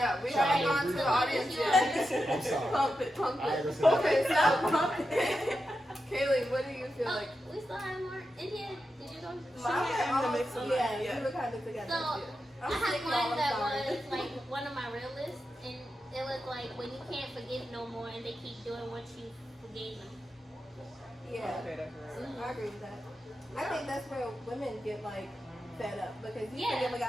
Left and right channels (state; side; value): normal; both; correlation 0.89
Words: we Shout haven't out gone to to the audience yet. I'm sorry. Pump it, pump I it. understand. Okay, stop pumping. Kaylee, what do you feel Oh, like? we still have more. India, did you go? Mine in the mix of mine, Yeah, yeah. we were kind of together. So I'm I had sick, y'all, one I'm that sorry. was like one of my real lists, and it was like when you can't forgive no more, and they keep doing what you forgave them. Yeah, Okay, that's real. I agree with that. I think that's where women get like fed up because you Yeah. forgive a